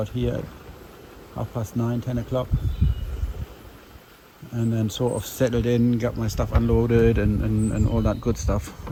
here at 9:30, 10 o'clock. And then sort of settled in, got my stuff unloaded and all that good stuff.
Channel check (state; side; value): identical; both; correlation 1.00